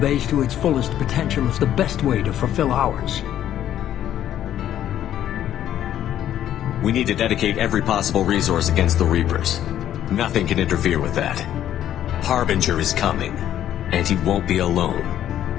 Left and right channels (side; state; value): right; quieter; 11.3 dB